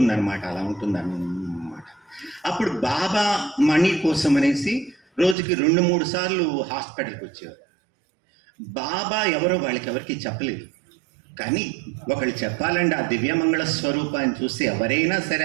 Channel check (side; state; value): left; drops out; at 5.4 s